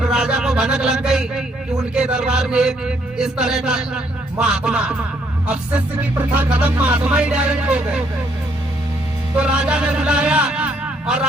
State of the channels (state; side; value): normal; both; correlation 0.70